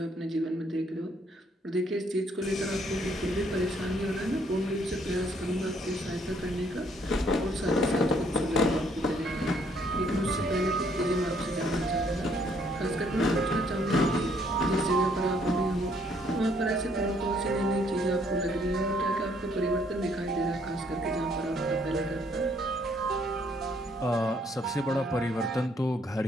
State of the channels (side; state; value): both; normal; correlation 0.67